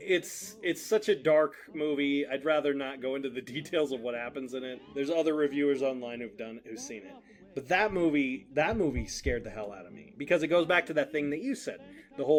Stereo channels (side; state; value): both; identical; correlation 1.00